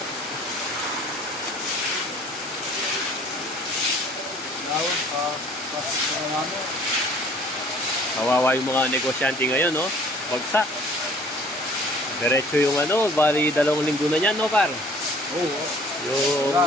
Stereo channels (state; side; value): normal; both; correlation 0.53